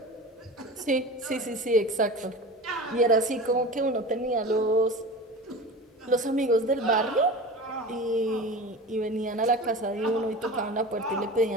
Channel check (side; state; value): both; normal; correlation 0.33